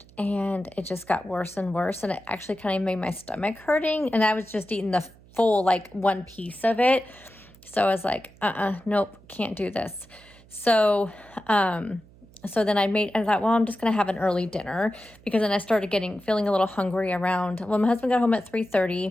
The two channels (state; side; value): noise; right; hum, 25 dB below the sound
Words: And it just got worse and worse. And it actually kind of made my stomach hurting. And I was just eating the full, like, 1 piece of it. So I was like, nope, can't do this. So, so then I thought, well, I'm just going to have an early dinner, because then I started feeling a little hungry around, well, my husband got home at